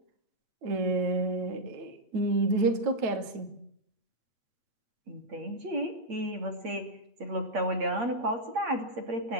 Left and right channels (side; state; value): left; late; 8.5 ms